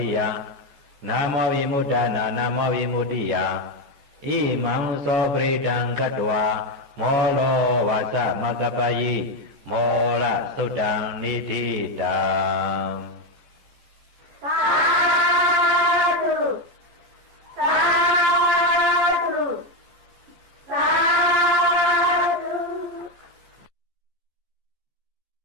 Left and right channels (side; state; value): left; late; 14 ms